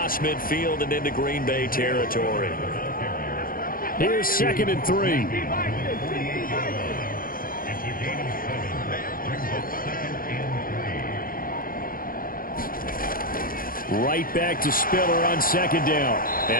midfield and into Green Bay territory. Here's 2nd and 3. Right back to Spiller on 2nd down.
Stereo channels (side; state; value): right; late; 0.41 ms